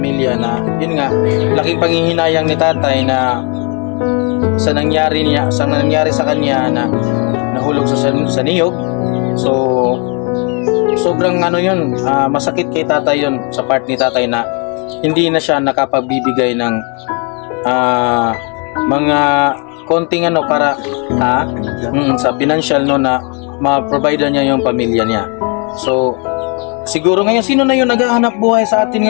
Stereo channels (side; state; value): right; quieter; 35.3 dB